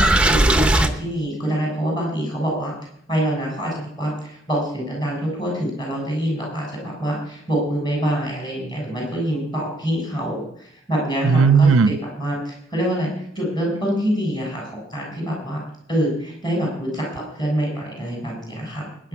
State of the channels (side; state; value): both; normal; correlation 0.69